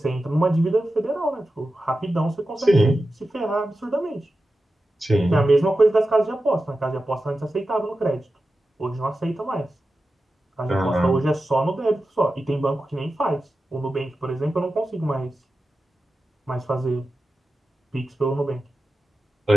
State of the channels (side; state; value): both; normal; correlation 0.92